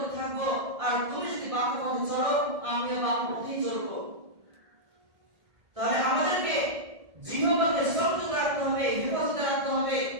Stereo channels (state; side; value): late; left; 1.6 ms